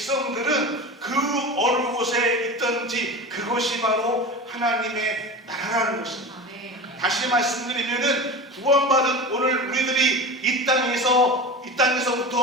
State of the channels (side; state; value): both; normal; correlation 0.30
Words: 그 어느 곳에 있든지 그것이 바로 하나님의 나라라는 것입니다. 다시 말씀드리면은 구원받은 오늘 우리들이 이